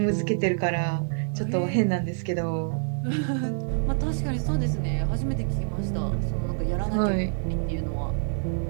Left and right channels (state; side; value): silent; left; digital silence